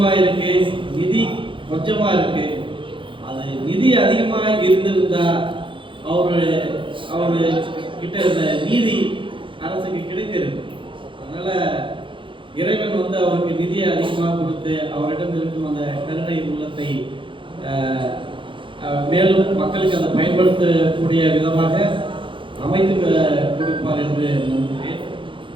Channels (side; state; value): left; late; 0.25 ms